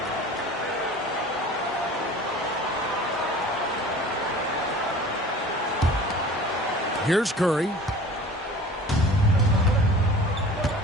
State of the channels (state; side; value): normal; both; correlation 0.43